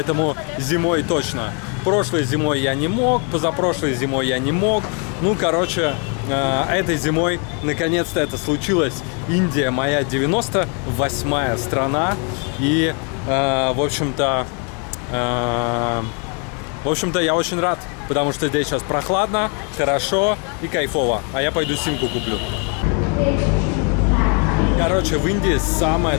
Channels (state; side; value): quieter; right; 35.8 dB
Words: зимой точно. Прошлой зимой я не мог, позапрошлой зимой я не мог. Ну, короче, этой зимой наконец-то это случилось. Индия моя 98-я страна. И, в общем-то, я очень рад, потому что здесь сейчас прохладно, хорошо и кайфово. А я пойду симку куплю. Короче, в Индии